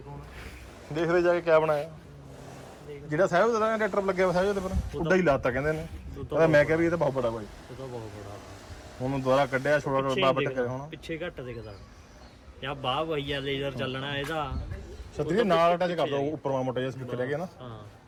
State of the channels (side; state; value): both; identical; correlation 1.00